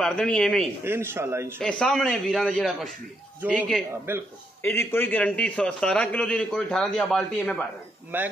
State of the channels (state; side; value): normal; both; correlation 0.77